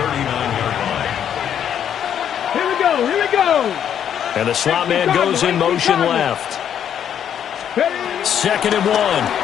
39-yard line. Here we go, here we go. And the slot man goes in motion left. Second and 1.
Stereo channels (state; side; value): quieter; right; 9.2 dB